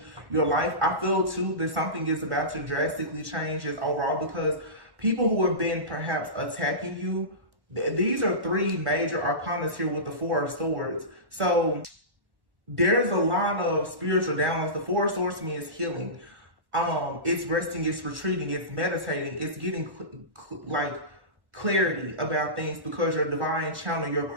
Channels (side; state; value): left; late; 1.1 ms